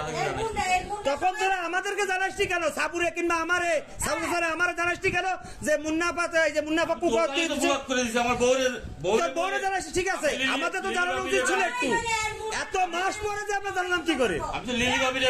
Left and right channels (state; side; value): identical; both; correlation 1.00